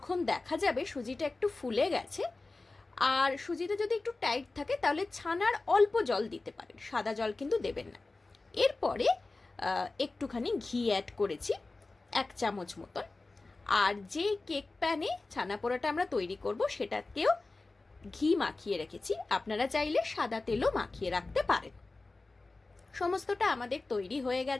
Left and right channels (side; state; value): right; quieter; 3.4 dB